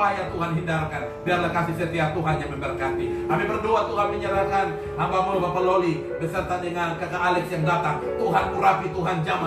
Tuhan hindarkan, biarlah kasih setia Tuhan yang memberkati. Kami berdoa Tuhan menyerahkan hamba-Mu Bapak Loli beserta dengan kakak Alex yang datang. Tuhan urapi, Tuhan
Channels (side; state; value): both; identical; correlation 1.00